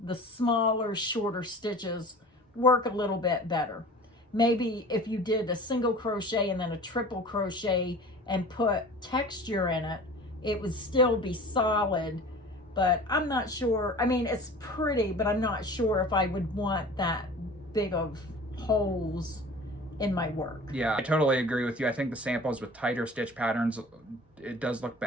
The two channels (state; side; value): normal; both; correlation 0.41